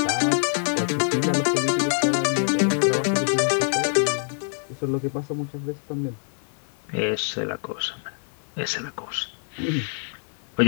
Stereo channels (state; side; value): silent; right; 55 dB below the other